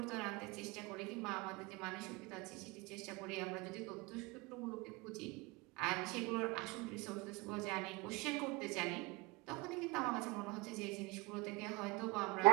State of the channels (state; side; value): quieter; left; 26.0 dB